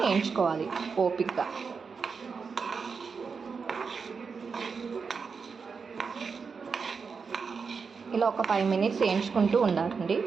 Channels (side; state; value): left; quieter; 5.4 dB